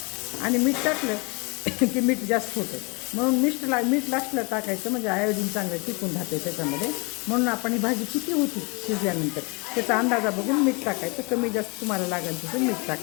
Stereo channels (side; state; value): right; quieter; 30.1 dB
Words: आणि मीठ टाकलं की मीठ जास्त होतं. म्हणून मीठ लास्टला टाकायचं, म्हणजे आयोडीन चांगलं टिकून राहते त्याच्यामध्ये. म्हणून आपण ही भाजी किती होती शिजल्यानंतर त्याचा अंदाजा बघून मीठ टाकायचं. कमी जास्त तुम्हाला लागेल तसं मीठ